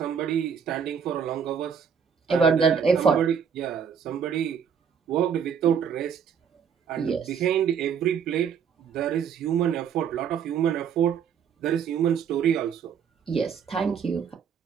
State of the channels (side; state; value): left; quieter; 7.3 dB